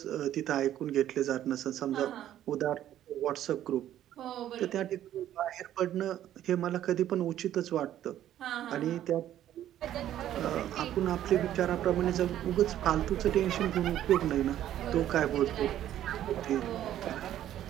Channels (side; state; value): left; quieter; 11.9 dB